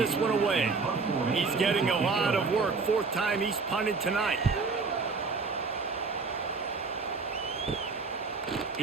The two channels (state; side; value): quieter; left; 4.5 dB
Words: one away. He's getting a lot of work. 4th time he's punted tonight.